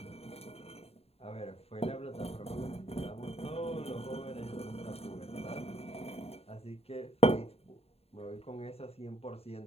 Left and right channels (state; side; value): late; right; 0.29 ms